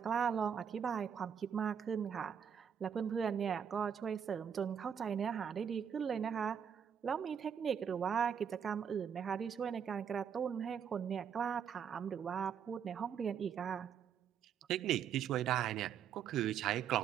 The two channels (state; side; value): quieter; left; 7.9 dB